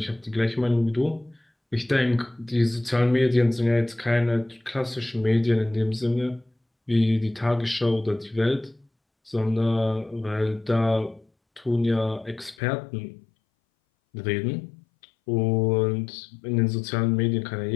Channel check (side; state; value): right; drops out; at 12.6 s